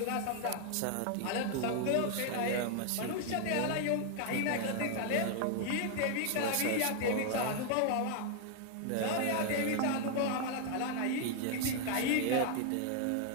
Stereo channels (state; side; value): different; both; correlation 0.00